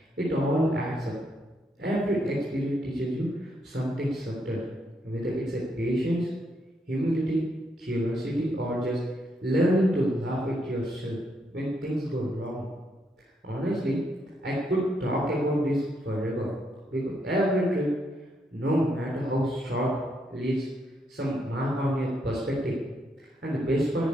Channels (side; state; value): both; normal; correlation 0.77